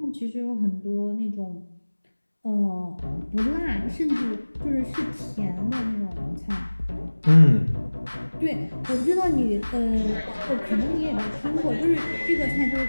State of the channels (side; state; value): both; inverted; correlation -1.00